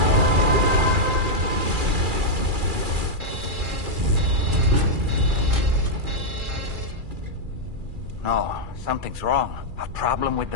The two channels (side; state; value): left; late; 2.4 ms